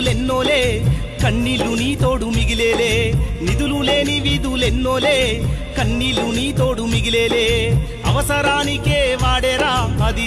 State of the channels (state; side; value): identical; both; correlation 1.00